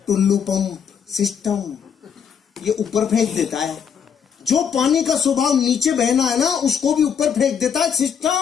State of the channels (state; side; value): quieter; right; 7.4 dB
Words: टुल्लू पंप सिस्टम, ये ऊपर फेंक देता है। जो पानी का स्वभाव नीचे बहना है ना, उसको भी ऊपर फेंक देता है